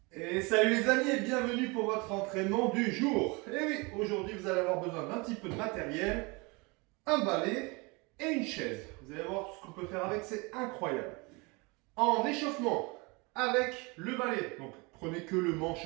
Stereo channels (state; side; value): quieter; left; 27.5 dB